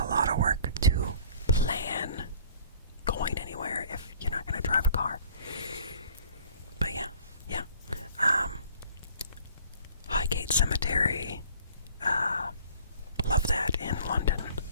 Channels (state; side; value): inverted; both; correlation -0.51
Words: lot of work to plan going anywhere if you're not going to drive a car. But yeah. Highgate Cemetery, love that in London.